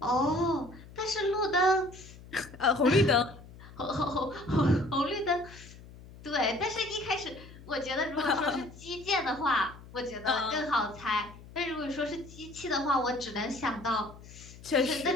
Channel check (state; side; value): noise; left; hum, 18 dB below the sound